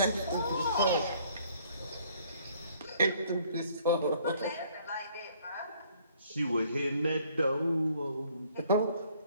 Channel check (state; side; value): inverted; both; correlation -0.61